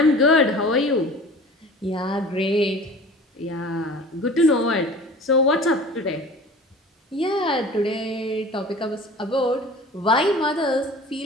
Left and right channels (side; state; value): both; normal; correlation 0.41